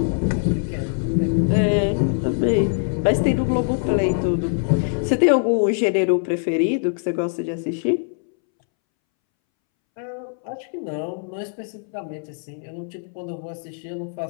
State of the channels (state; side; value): silent; right; 64 dB below the other